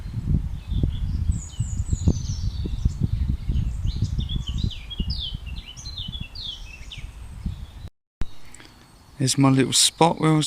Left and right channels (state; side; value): identical; both; correlation 1.00